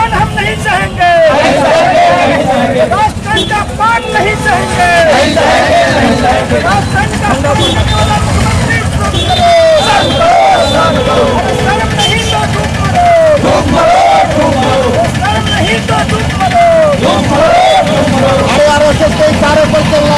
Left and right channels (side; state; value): both; identical; correlation 1.00